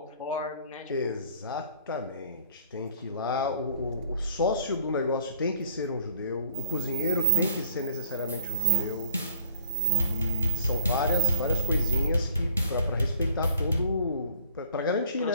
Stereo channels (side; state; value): both; inverted; correlation -0.53